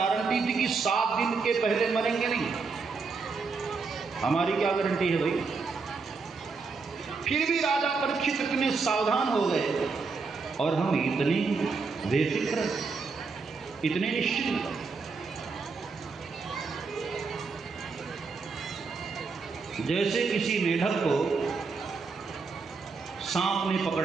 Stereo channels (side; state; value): left; quieter; 4.6 dB